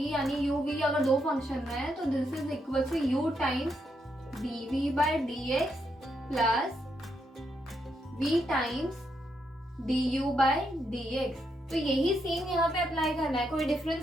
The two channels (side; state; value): both; normal; correlation 0.80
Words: यानी u v अगर दो फंक्शन है तो this is equal to u times dv by dx plus v times du by dx. तो यही same यहाँ पे apply करना है, कोई